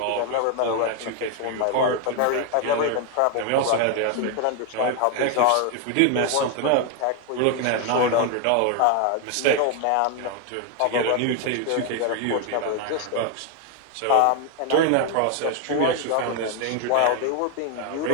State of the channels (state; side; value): different; both; correlation 0.01